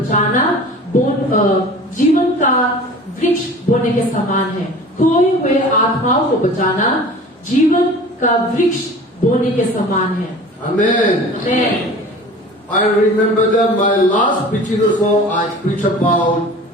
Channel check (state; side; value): normal; both; correlation 0.41